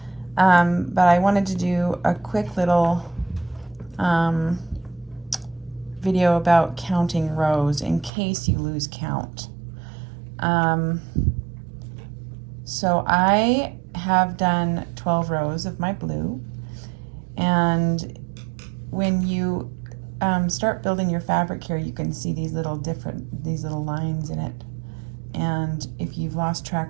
but I wanted to do a quick little video about counting rows in case you lose count. So I have done 12 rows of my blue, and when you start building your fabric here, you can see these little lines in it. And if you've lost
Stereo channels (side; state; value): left; drops out; at 8.1 s